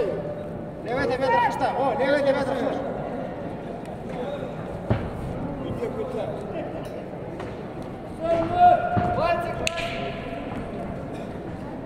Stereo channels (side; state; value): both; identical; correlation 1.00